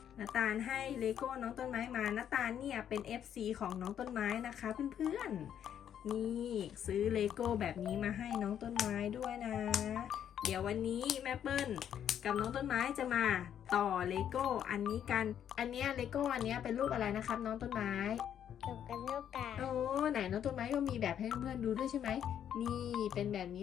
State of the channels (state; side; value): quieter; right; 9.5 dB